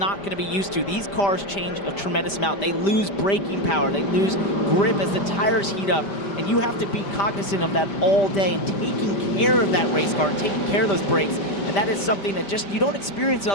going to be used to. These cars change a tremendous amount. They lose braking power. They lose grip as the tires heat up. And you have to be cognizant of that all day and taking care of that race car and taking care of those brakes. And that is something that just you don't experience in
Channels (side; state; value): right; late; 5.1 ms